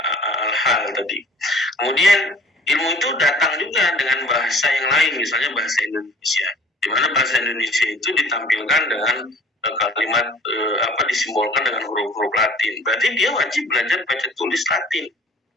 hal tadi. Kemudian ilmu itu datang juga dengan bahasa yang lain, misalnya bahasa Indonesia, di mana bahasa Indonesia itu ditampilkan dengan kalimat disimbolkan dengan huruf-huruf Latin. Berarti dia wajib belajar baca tulis Latin,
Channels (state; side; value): normal; both; correlation 0.51